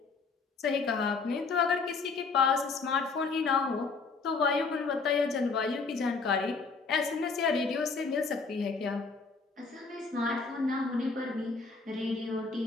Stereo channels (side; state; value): right; quieter; 4.5 dB